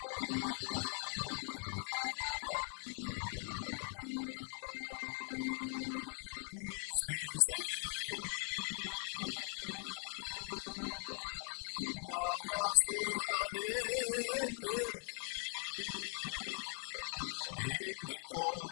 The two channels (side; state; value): right; silent; 50 dB below the other